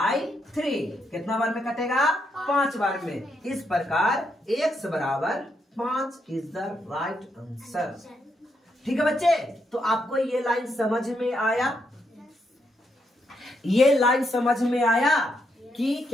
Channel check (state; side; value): normal; both; correlation 0.79